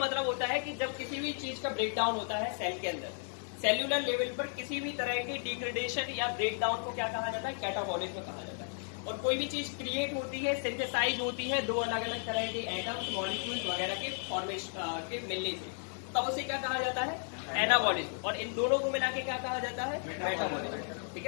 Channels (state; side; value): silent; right; 55 dB below the other